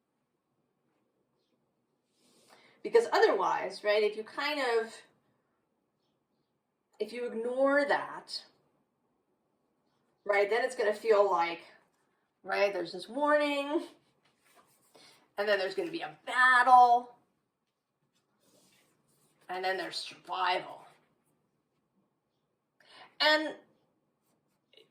Because otherwise, right, if you ignore that, right, then it's going to feel like, right, there's this warning, and then there's going to be a battle, and then there's survival. And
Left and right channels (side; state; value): both; identical; correlation 1.00